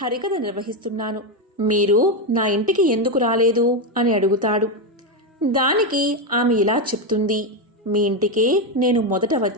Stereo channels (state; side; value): normal; both; correlation 0.08